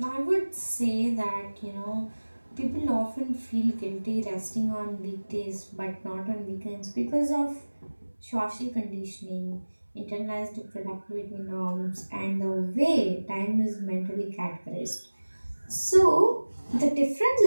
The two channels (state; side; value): inverted; both; correlation -1.00